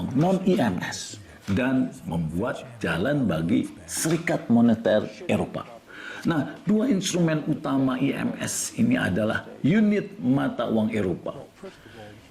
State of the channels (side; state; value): both; identical; correlation 1.00